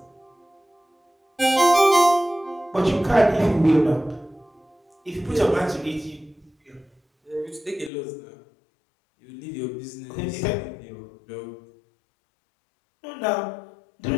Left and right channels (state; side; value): drops out; right; at 7.9 s